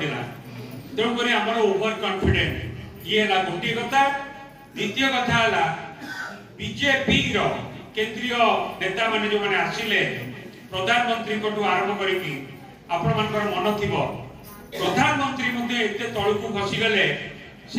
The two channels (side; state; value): both; identical; correlation 1.00